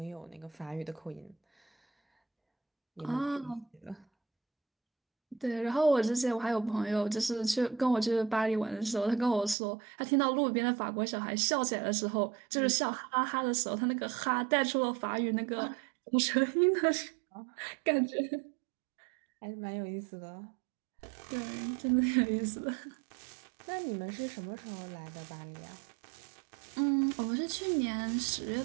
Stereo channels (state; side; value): drops out; left; at 9.6 s